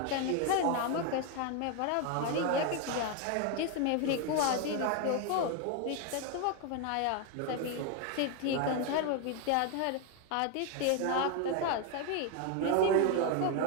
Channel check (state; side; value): different; both; correlation 0.01